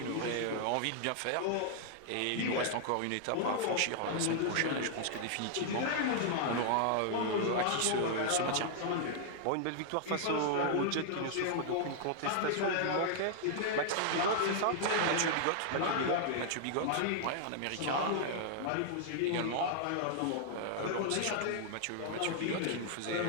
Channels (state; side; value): different; both; correlation -0.01